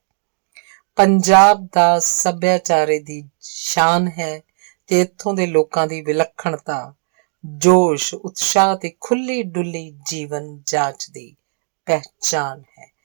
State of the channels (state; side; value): silent; left; digital silence